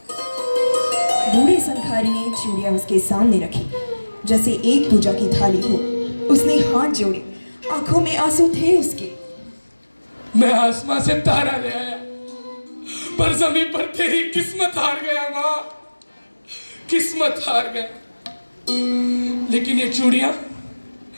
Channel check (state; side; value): inverted; both; correlation -1.00